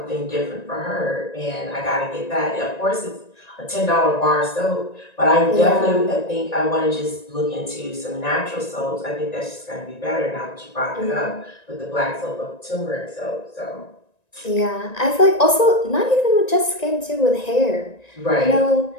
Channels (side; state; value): right; late; 1.9 ms